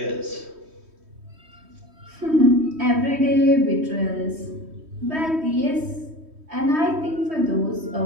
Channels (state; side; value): late; left; 3.1 ms